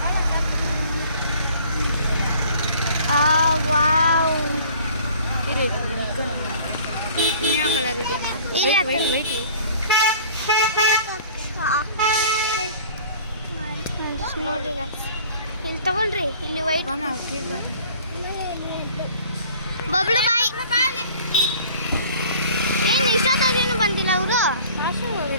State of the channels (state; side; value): inverted; both; correlation -0.49